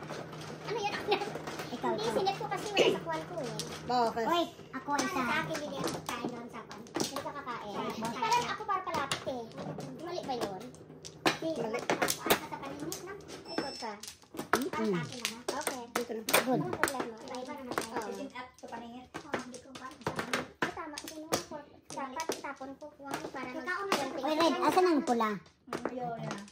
Ano yan? Ikaw. Hindi, sinet ko kasi wala sa kuwan ko eh. Bakit? Uy, ako isa. Sa akin, bili ako kain doon sa kuwan. Hindi ka kakain. Parang ako para palapit eh. Mali ba yun? Mali. Asa sa paninit na? Ay, good ka. Para sa akin na ha? Okay. Dito na. Good. Ano problema? Iba naman tayo. Sit up sa paningit. Hindi ko ba? Tama, sino ako? Dapat itapon ko kuwan para Uy, Red, asan ang pula? Ayun.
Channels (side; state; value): both; identical; correlation 1.00